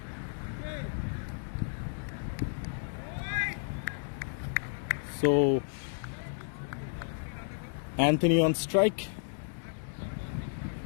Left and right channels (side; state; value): right; silent; digital silence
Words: So Anthony on strike.